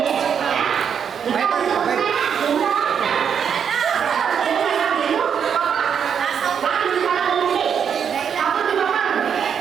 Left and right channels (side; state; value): left; quieter; 7.6 dB